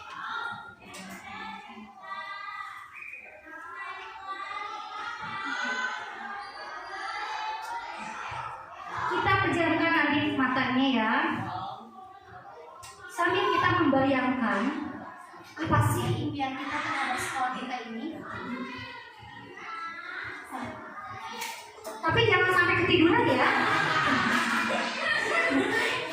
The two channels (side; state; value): both; identical; correlation 1.00